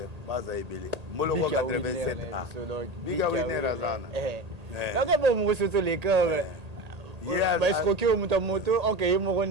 Baza Ebele. Moloko 87A. Biga Winner Azana. Donc, bon, moi, c'est les cœurs. Bah, escroquer au moto, ok, il m'a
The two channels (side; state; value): left; late; 1.8 ms